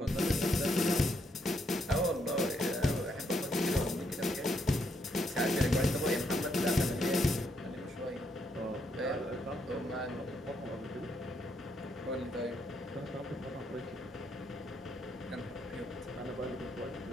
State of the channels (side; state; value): both; normal; correlation 0.76